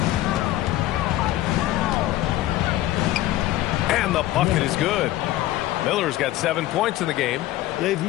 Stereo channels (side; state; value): right; quieter; 15.0 dB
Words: And the bucket is good. Miller's got 7 points in the game. They've